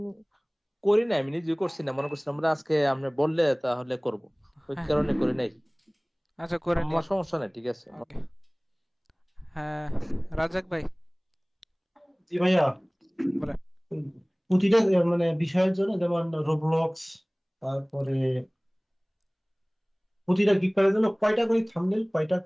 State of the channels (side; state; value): both; identical; correlation 1.00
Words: করি না, আমি নিজে করছি না, মনে করছি আমরা আজকে আপনি বললে তাহলে করব, ওই হ্যাঁ কারণে করি নাই। আচ্ছা করে আমার নেন। সমস্যা নাই, ঠিক আছে। ওকে। হ্যাঁ রাজাক ভাই জি ভাইয়া, বলেন। প্রতিটা মানে বিষয়ের জন্য যেমন রোবলক্স, তারপরে প্রতিটা গিগ কার্ডের জন্য কয়টা করে থাম্বনেল, কয়টা